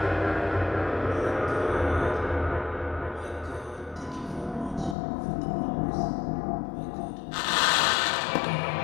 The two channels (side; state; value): right; drops out; at 5.0 s